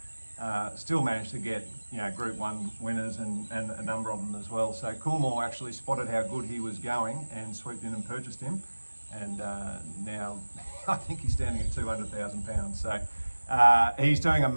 still managed to get Group 1 winners and a number of them as well. So Coolmore actually spotted how good he was going and swooped in and purchased him, and now I think he's standing at £200,000. So he's doing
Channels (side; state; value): both; inverted; correlation -1.00